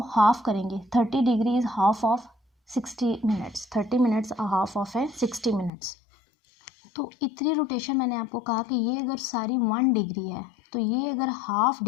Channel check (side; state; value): right; drops out; at 5.7 s